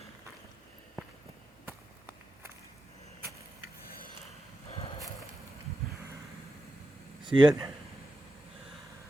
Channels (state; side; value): normal; both; correlation 0.89